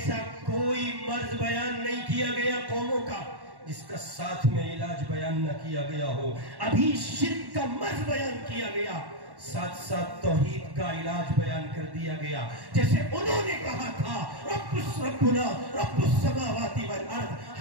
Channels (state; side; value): late; left; 1.1 ms